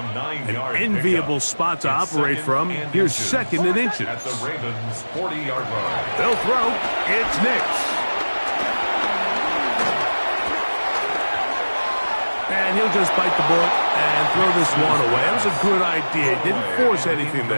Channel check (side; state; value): both; inverted; correlation -1.00